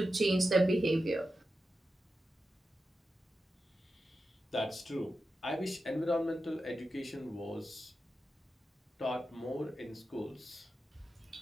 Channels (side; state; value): both; normal; correlation 0.91